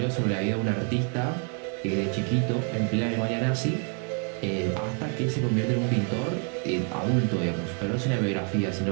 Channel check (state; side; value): quieter; left; 38.4 dB